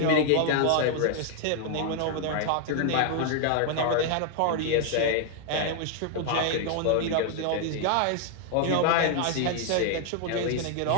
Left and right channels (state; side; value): different; both; correlation 0.00